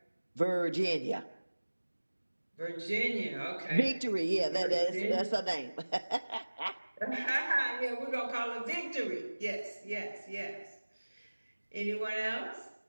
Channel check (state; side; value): inverted; both; correlation -1.00